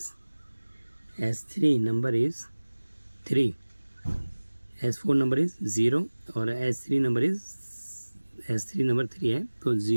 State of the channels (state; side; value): inverted; both; correlation -1.00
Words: 3, S4 number is 0 और S3 नंबर 3 है, तो